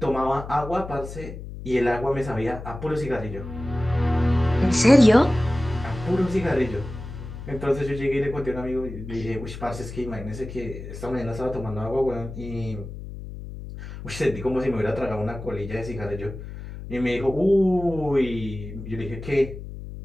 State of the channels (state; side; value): noise; left; hum, 11 dB below the sound